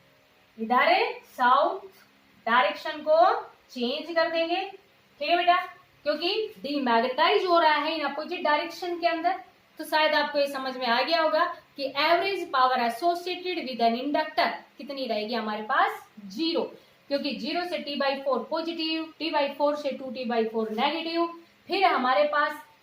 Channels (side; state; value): both; identical; correlation 1.00